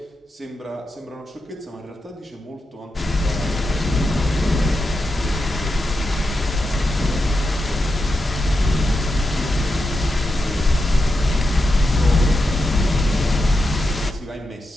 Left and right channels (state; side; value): normal; both; correlation 0.87